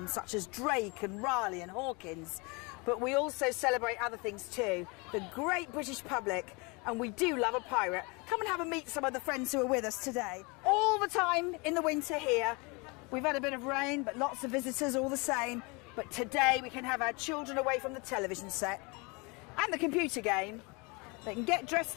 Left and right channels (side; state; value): right; quieter; 28.7 dB